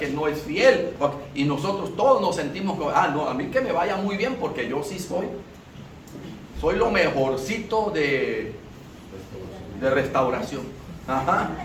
no es fiel. Y nosotros todos nos sentimos que, no, a mí que me vaya muy bien porque yo sí soy lo mejorcito de restauración. Ajá.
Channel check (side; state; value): both; identical; correlation 1.00